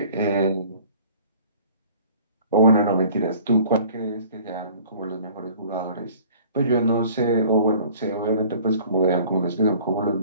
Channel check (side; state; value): both; inverted; correlation -0.50